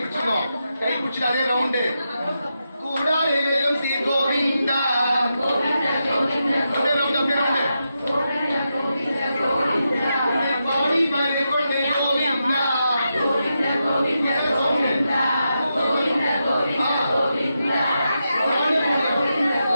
கை பிடிச்சி அதே ரவுண்டு கூடாலே வேலும் ஸ்ரீ கோவிந்தா பாடி பாடி கொண்டு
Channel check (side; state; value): both; inverted; correlation -0.87